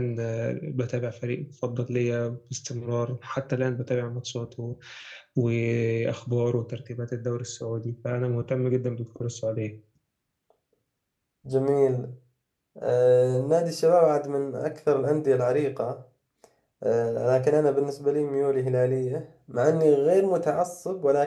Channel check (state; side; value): identical; both; correlation 1.00